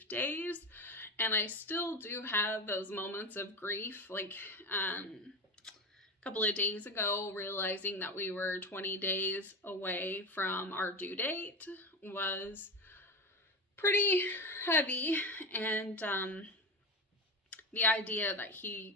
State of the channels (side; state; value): both; normal; correlation 0.21